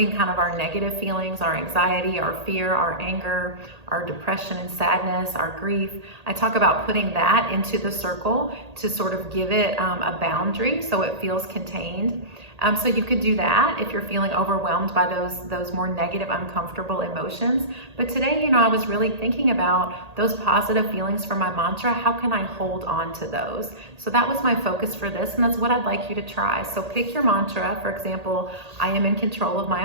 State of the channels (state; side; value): late; left; 1.8 ms